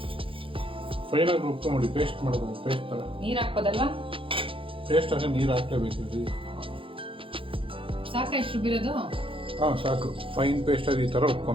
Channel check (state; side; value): late; left; 0.26 ms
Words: ಫೈನಾಗಿ ರುಬ್ಕೊಂಬಿಡಿ, ಪೇಸ್ಟ್ ಮಾಡೋದು, ಪೇಸ್ಟ್ ಥರ. ನೀರು ಹಾಕ್ಬೋದಲ್ವಾ? ಪೇಸ್ಟ್ ಆಗ ನೀರು ಹಾಕ್ಲೇಬೇಕು. ಸಾಕ ಎಷ್ಟು ರುಬ್ಬಿರೋದು? ಹಾಂ ಸಾಕು. ಫೈನ್ ಪೇಸ್ಟ್ ಆಗಿ ಈ ಥರ